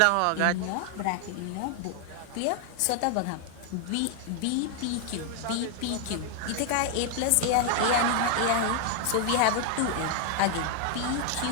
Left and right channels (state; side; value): different; both; correlation 0.00